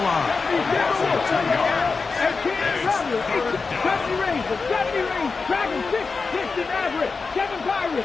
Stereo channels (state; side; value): quieter; right; 4.5 dB